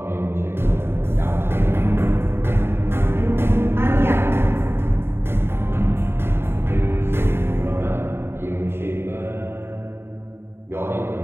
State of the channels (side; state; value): left; late; 0.11 ms